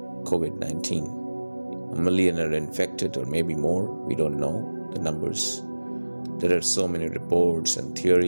COVID-19, 1 million are infected or maybe more, we don't know the numbers. There are so many reports and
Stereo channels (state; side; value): inverted; both; correlation -1.00